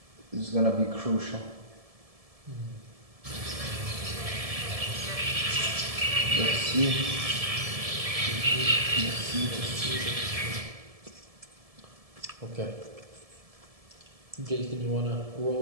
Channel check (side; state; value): left; late; 1.7 ms